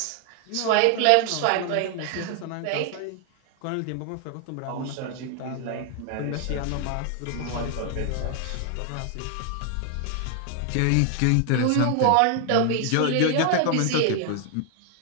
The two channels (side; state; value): both; different; correlation 0.00